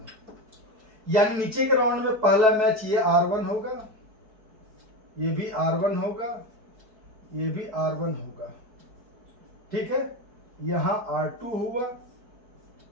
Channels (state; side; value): late; left; 4.6 ms